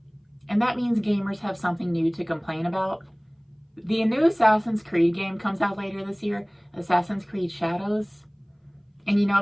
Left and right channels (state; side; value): identical; both; correlation 1.00